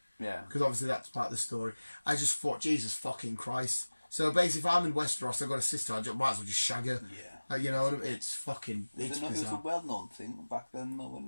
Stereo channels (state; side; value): inverted; both; correlation -1.00